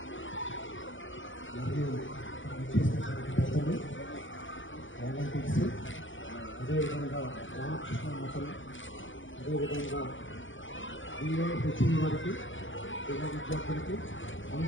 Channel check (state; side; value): late; right; 0.56 ms